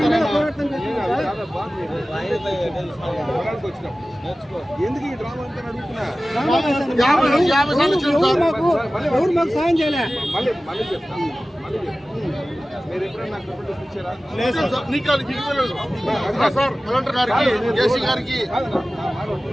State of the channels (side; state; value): both; normal; correlation 0.96